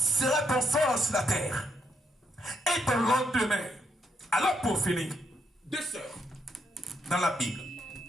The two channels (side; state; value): both; normal; correlation 0.77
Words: ton sort sur la terre? Et ton lendemain. Alors pour finir, deux sœurs dans la Bible,